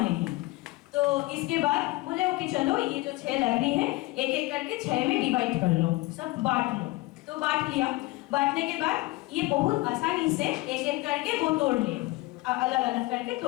तो इसके बाद बोले कि चलो ये जो 6 लकड़ी है एक एक करके 6 में डिवाइड कर लो, सब बांट लो। तो बांट लिया, बांटने के बाद ये बहुत आसानी से एक एक करके वो तोड़ लिए, अलग अलग करके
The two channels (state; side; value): quieter; right; 21.3 dB